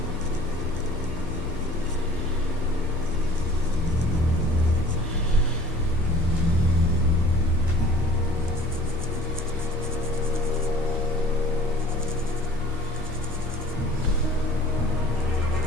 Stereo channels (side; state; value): both; normal; correlation 0.49